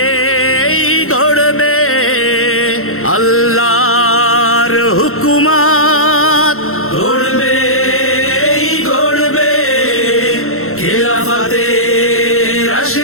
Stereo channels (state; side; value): late; right; 0.62 ms